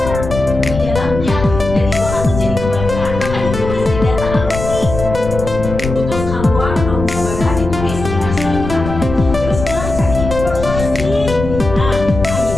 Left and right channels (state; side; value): noise; left; rumble, 7 dB below the sound